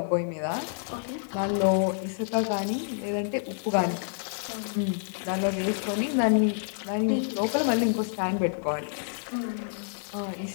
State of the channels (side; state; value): right; silent; digital silence